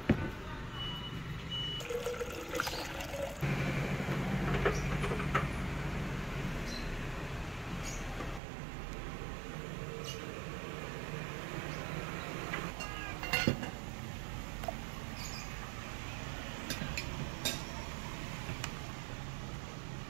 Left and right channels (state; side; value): drops out; left; at 8.4 s